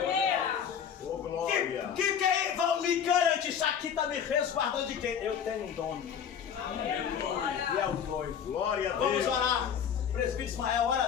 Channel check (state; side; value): quieter; right; 8.0 dB